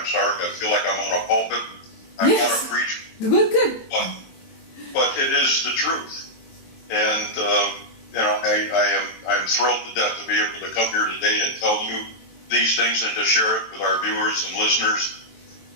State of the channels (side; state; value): right; late; 23 ms